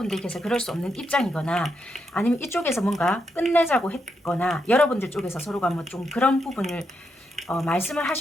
그럴 수 없는 입장이거나 아니면 이쪽에서 뭔가 끝내자고 했거나 여러분들 쪽에서 서로가 뭐 좀 그런 부분을 말씀을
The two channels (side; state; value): both; normal; correlation 0.82